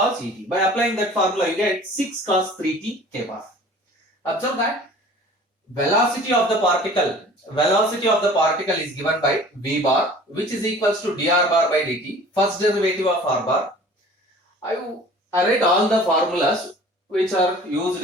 By applying that formula, you get 6 cos 3t k bar. Observe that velocity of the particle is given by v bar, which is equals to dr bar by dt. First derivative of r bar. I write all the formulas which are used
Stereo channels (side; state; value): both; normal; correlation 0.46